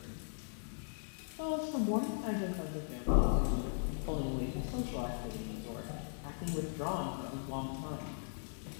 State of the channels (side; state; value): right; silent; 52 dB below the other